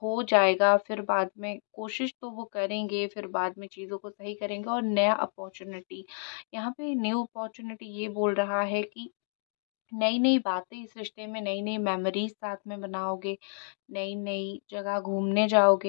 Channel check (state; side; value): silent; right; digital silence